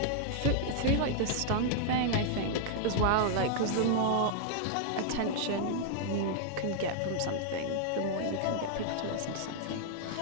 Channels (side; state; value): both; different; correlation -0.01